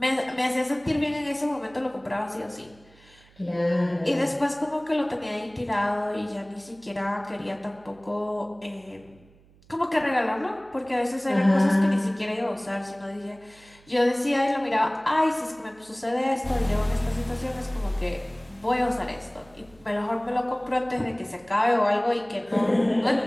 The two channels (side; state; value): right; noise; hum, 28 dB below the sound